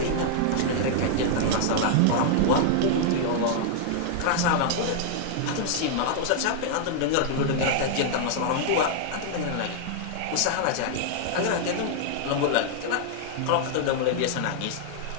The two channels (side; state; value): both; different; correlation -0.01